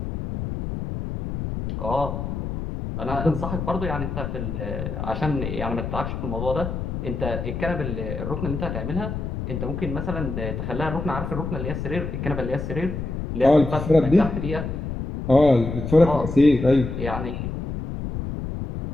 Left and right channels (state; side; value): noise; left; rumble, 5 dB below the sound